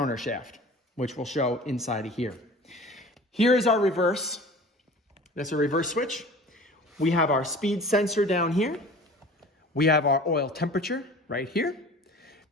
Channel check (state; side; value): normal; both; correlation 0.42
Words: which we'll show inside of here. Here is our reverse. That's a reverse switch. We have our speed sensor down here. We have our oil temperature right here.